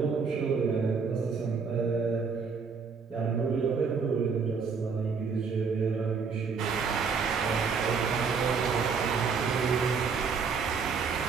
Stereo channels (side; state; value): left; quieter; 5.4 dB